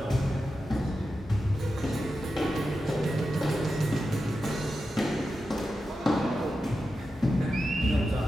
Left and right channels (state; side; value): normal; both; correlation 0.90